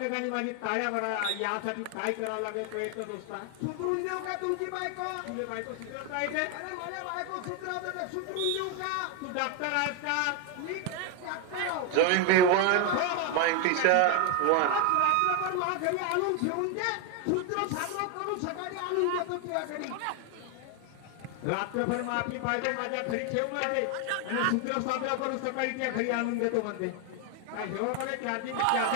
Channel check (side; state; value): both; different; correlation 0.01